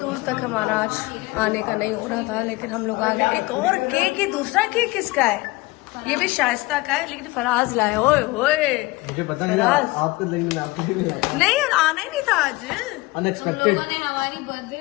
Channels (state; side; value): quieter; right; 21.6 dB